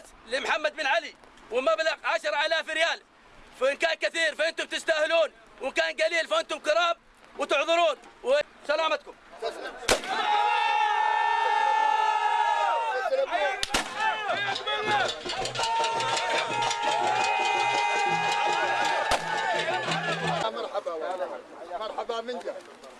لمحمد بن علي ومبلغ 10,000 ريال. فإن كان كثير فأنتم تستاهلون، وإن كان قليل فأنتم كرام وتعذرون. وسلامتكم. مرحبا من جد.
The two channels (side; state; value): both; identical; correlation 1.00